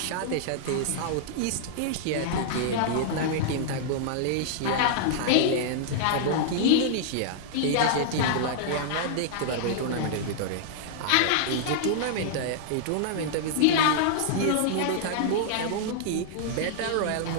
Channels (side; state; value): both; different; correlation -0.01